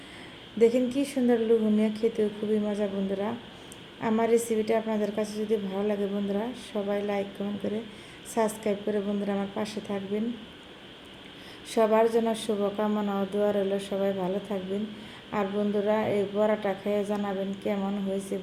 দেখেন কি সুন্দর লোভনীয়, খেতেও খুবই মজা বন্ধুরা। আমার রেসিপিটা আপনাদের কাছে যদি ভালো লাগে বন্ধুরা, সবাই লাইক কমেন্ট করে সাবস্ক্রাইব করে বন্ধুরা আমার পাশে থাকবেন। সবার জন্য শুভকামনা ও দোয়া রইল, সবাই ভালো থাকবেন। আর বন্ধুরা এই বড়াটা খেয়ে জানাবেন কেমন হয়েছে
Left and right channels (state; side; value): identical; both; correlation 1.00